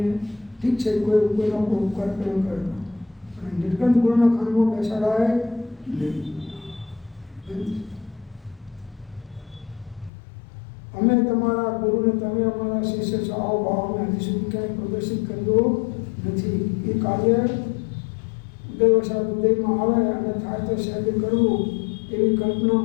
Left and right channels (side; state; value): right; drops out; at 10.1 s